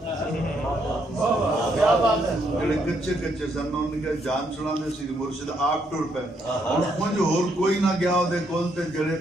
کچے کچے سن انہوں نے کہا جان چھڑا دے سی مرشد آپ ٹور پہ مجھے اور کوئی نہ گیا ہو دے کول تے جڑے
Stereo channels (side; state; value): both; normal; correlation 0.74